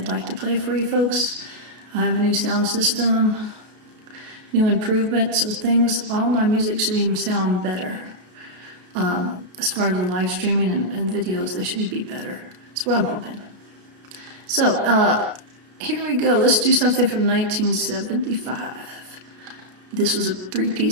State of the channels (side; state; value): left; late; 33 ms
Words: like to play for you folks. I have a new sound system, new improvements, so things, all my music should even sound better. As far as the live streaming and videos, they should be better. That's what I'm hoping. So, here we go. Let's do something from 1975. This was a